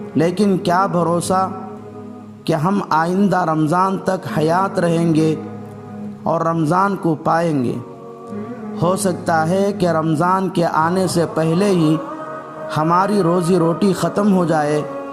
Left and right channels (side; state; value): both; identical; correlation 1.00